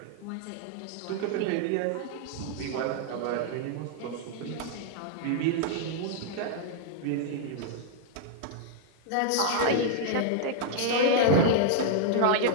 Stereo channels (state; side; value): different; both; correlation 0.00